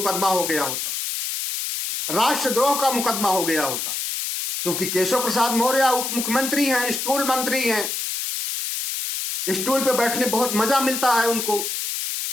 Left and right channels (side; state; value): left; noise; hiss, 3 dB below the sound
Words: हो गया होता, राष्ट्रद्रोह का मुकदमा हो गया होता। क्योंकि केशव प्रसाद मौर्य उप मुख्यमंत्री हैं, स्टूल मंत्री हैं, स्टूल पे बैठने बहुत मजा मिलता है उनको,